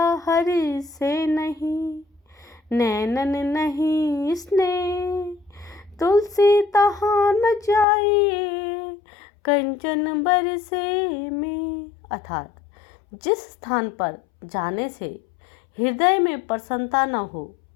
हरि से नहीं, नैनन नहीं स्नेह, तुलसी तहाँ न जाइए, कंचन बरसे में। अर्थात जिस स्थान पर जाने से हृदय में प्रसन्नता न हो,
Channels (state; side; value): drops out; right; at 7.9 s